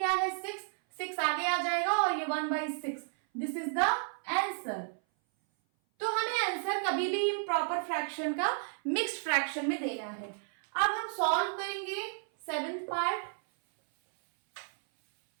है 6, 6 आगे आ जाएगा और ये 1/6। This is the answer. तो हमें आंसर कभी भी इम्प्रॉपर फ्रैक्शन का मिक्स्ड फ्रैक्शन में देना है। अब हम सॉल्व करेंगे 7th पार्ट।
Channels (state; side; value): silent; left; 56 dB below the other